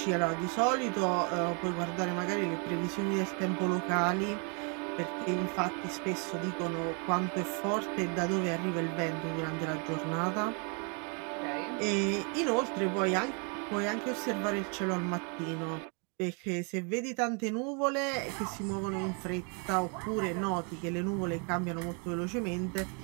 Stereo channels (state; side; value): quieter; left; 36.6 dB